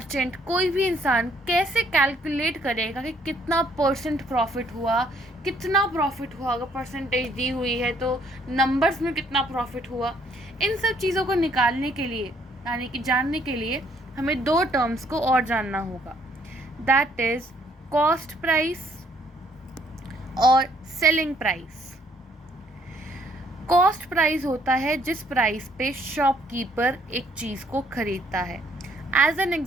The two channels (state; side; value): normal; both; correlation 0.66